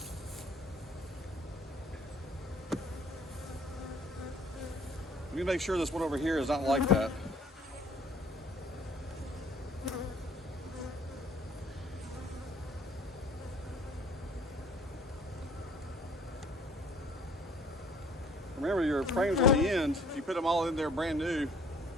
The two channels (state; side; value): normal; both; correlation 0.56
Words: Let me make sure this one over here is not like that. Remember, your frames on the end, if you put them all in there brand new,